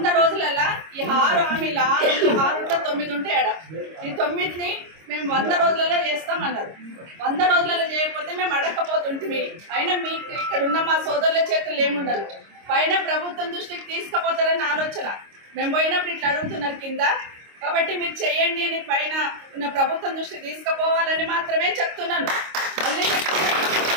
రోజులలో ఈ 6 హామీలు 9 ఉంటాయి ఆడ. ఈ 9ని మేము 100 రోజులలో చేస్తామన్నారు. 100 రోజులలో చేయకపోతే మేము అడగకపోతుంటిమి. అయినా మీకు ఇక్కడ ఉన్న మా సోదరుల చేతులు ఏముండదు. పైన ప్రభుత్వం దృష్టికి తీసుకుపోతారని ఆలోచన. మేము పోయినప్పుడు ఇట్లా అడుగుతున్నారు కింద. కాబట్టి మీరు చేయండి అని పైన ఉన్న ప్రభుత్వం దృష్టికి తీసుకుపోవాలని మాత్రమే చెప్తున్నాను.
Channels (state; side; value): late; left; 26 ms